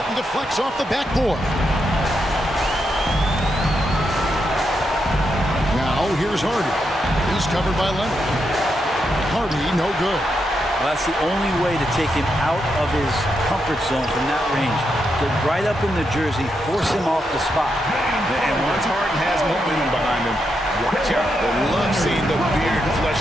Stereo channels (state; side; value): normal; both; correlation 0.83